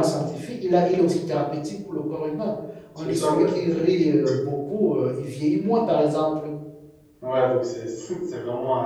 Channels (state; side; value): identical; both; correlation 1.00